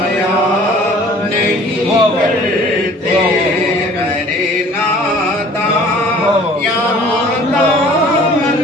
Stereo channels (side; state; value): both; normal; correlation 0.50